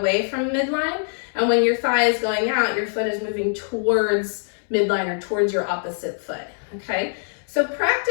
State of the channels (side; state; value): right; silent; 63 dB below the other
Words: from midline, and when your thigh is going out, your foot is moving towards midline or towards your opposite foot, okay? So